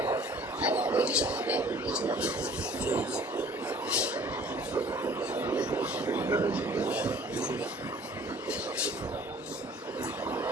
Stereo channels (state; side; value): normal; both; correlation 0.51